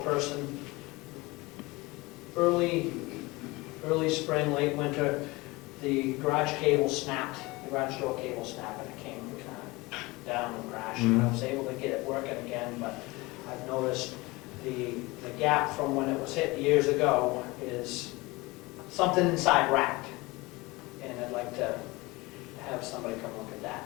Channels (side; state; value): right; quieter; 22.7 dB